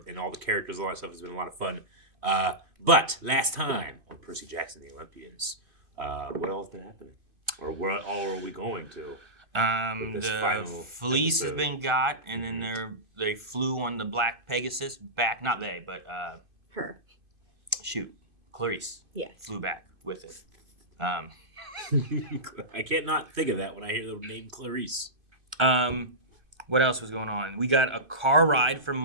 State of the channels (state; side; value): late; left; 2.5 ms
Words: and all the characters, all that stuff has been a lot of fun. But last time on Percy Jackson and the Olympians, what else been happening? Or what all are we going to? With this the final Fleece has episode. been got, and then they flew on the Black Pegasus back. Not they, but Her. shoot, Clarice Yes. flew back with it. I can't not think of that when I hear the name Clarice. What else was going on? We got a car ride from